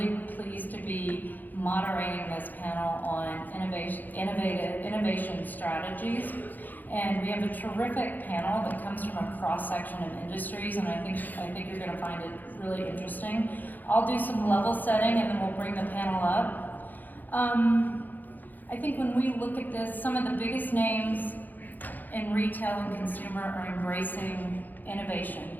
pleased to be moderating this panel on innovation strategies. And we have a terrific panel that comes from a cross-section of industries, and I think you're going to find it really interesting. I'll do some level setting, and then we'll bring the panel up. I think when we look at this, some of the biggest names in retail and consumer are embracing innovation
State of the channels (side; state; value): right; late; 0.085 ms